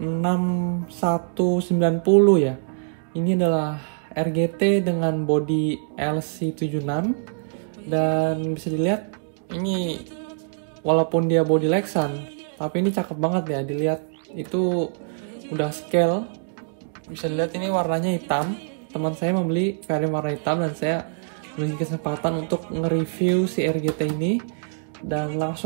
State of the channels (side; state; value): left; silent; digital silence